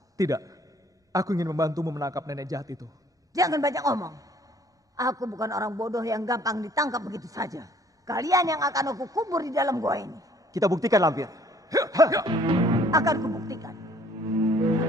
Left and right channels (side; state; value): both; normal; correlation 0.58